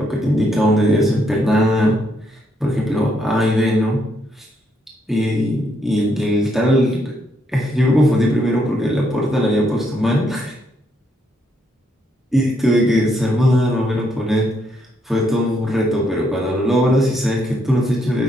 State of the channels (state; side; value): normal; both; correlation 0.75